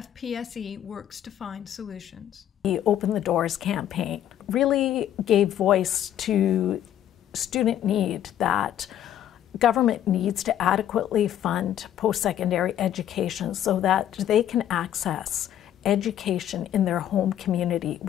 works to find solutions. The Open the Doors campaign really gave voice to student need that government needs to adequately fund post-secondary education so that they can access education in their home community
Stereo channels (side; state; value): right; quieter; 11.0 dB